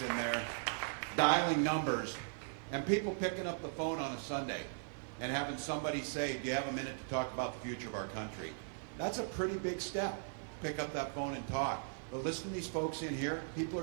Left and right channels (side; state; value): left; silent; digital silence